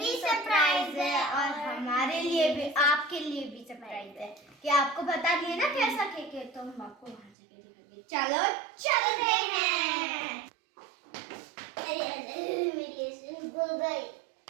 सरप्राइज है और हमारे लिए भी, आपके लिए भी सरप्राइज है कि आपको बता दिए ना कैसा केक है, तो हम आपको वहाँ जाके दिखाएंगे। चलो चलते हैं। मेरी गो गई।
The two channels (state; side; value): drops out; left; at 7.3 s